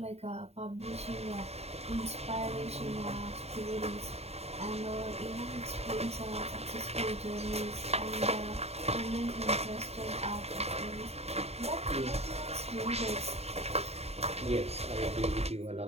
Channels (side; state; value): left; late; 0.30 ms